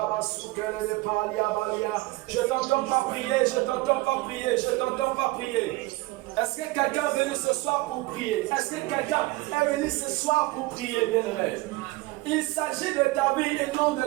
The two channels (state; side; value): quieter; left; 21.0 dB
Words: t'entends pas prier, je t'entends pas prier, je t'entends pas prier. Est-ce que quelqu'un est venu ce soir pour prier? Est-ce que quelqu'un est venu ce soir pour prier, bien-aimé? Il s'agit de ta vie et non de